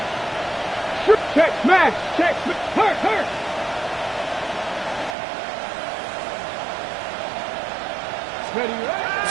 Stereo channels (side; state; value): left; drops out; at 5.2 s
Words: Check, smash, hurt.